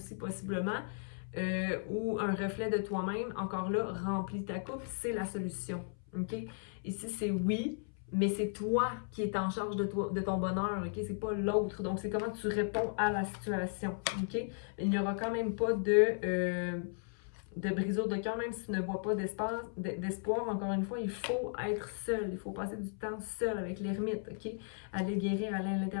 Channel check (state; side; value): silent; right; 54 dB below the other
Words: possiblement, ou un reflet de toi-même. Encore là, remplis ta coupe, c'est la solution, OK? Ici, c'est oui, mais c'est toi qui es en charge de ton bonheur, OK? C'est pas l'autre. Donc, c'est comment tu réponds à la situation, OK? Il n'y aura quand même pas de brisure de cœur, même si tu ne vois pas d'espoir. Encore une fois, il faut être seul. Il faut passer du temps seul avec l'ermite, OK? Aller guérir, aller à